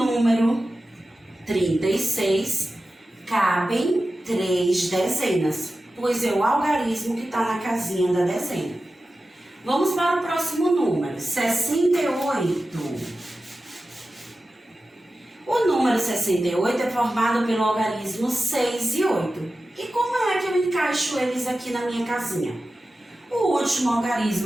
36, cabem 3 dezenas, pois é o algarismo que está na casinha da dezena. Vamos para o próximo número, 68. O número 68 é formado pelo algarismo 6 e 8. E como é que eu encaixo eles aqui na minha casinha? O último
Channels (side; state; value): both; normal; correlation 0.94